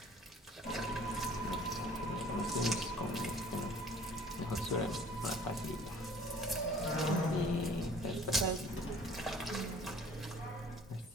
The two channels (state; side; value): normal; both; correlation 0.50